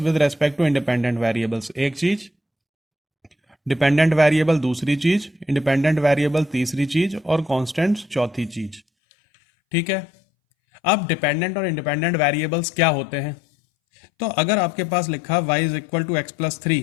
respect to independent variables, एक चीज़, डिपेंडेंट वेरिएबल दूसरी चीज, इंडिपेंडेंट वेरिएबल तीसरी चीज और कांस्टेंट्स चौथी चीज। ठीक है, अब डिपेंडेंट और इंडिपेंडेंट वेरिएबल्स क्या होते हैं। तो अगर आपके पास लिखा y is equal to x plus three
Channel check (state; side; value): drops out; right; at 8.8 s